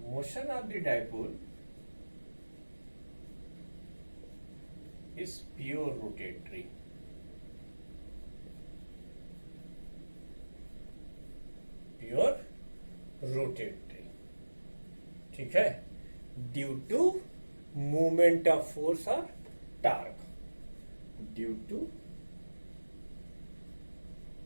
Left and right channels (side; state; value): both; inverted; correlation -1.00